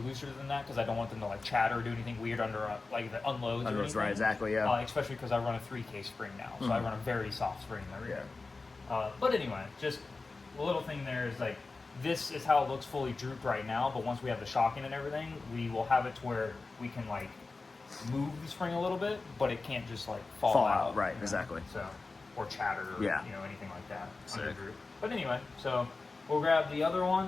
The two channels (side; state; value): right; quieter; 3.8 dB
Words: looser than that because I don't want them to like chatter or do anything weird under like the unloads or anything. Right, exactly, yeah. Especially because I run a 3K spring now, so I run a very soft spring in the rear. But anyway, just a little thing there is like, this is how it looks fully drooped right now, but once we have the shocking and everything, we will have it to where we can like move the spring a little bit, but it can't just like fall out. Right, you know? exactly. So, or chatter, or, Yeah. you know, anything like that. Sick. Under droop. But anyway, so we'll grab the other